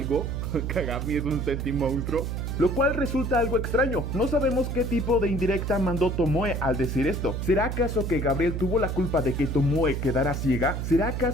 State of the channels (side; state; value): right; noise; hum, 3 dB below the sound